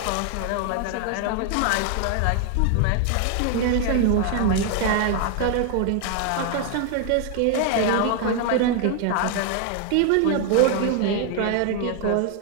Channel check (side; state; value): both; different; correlation 0.00